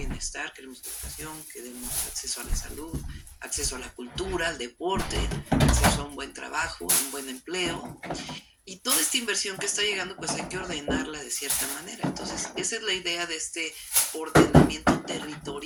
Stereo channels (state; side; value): identical; both; correlation 1.00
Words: queremos educación, queremos acceso a la salud, acceso a la cultura, al deporte, acceso a un buen trabajo, a un buen empleo. Y toda esta inversión que está llegando, pues hay que ordenarla de cierta manera. Entonces, esa es la idea de este ordenamiento